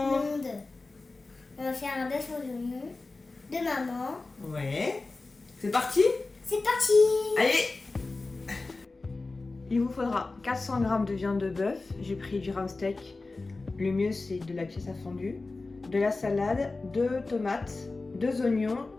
On va faire un bœuf aux oignons de maman. Ouais. C'est parti? C'est parti! Allez! Il vous faudra 400 g de viande de bœuf. J'ai pris du round steak. Le mieux, c'est de la pièce à fondue. De la salade, 2 tomates, 2 oignons,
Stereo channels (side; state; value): right; quieter; 3.5 dB